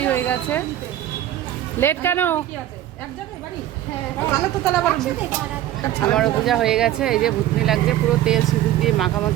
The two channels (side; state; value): left; quieter; 13.0 dB